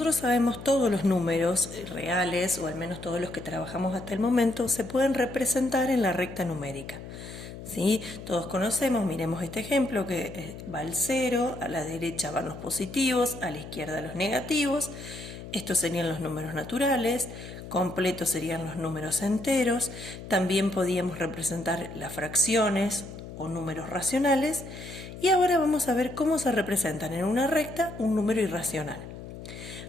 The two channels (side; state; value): left; noise; hum, 12 dB below the sound